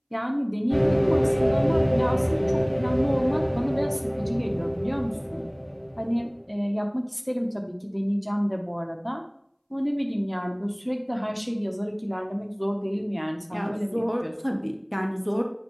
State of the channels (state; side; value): identical; both; correlation 1.00